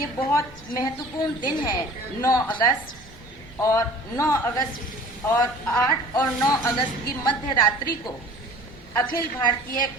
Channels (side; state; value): both; normal; correlation 0.46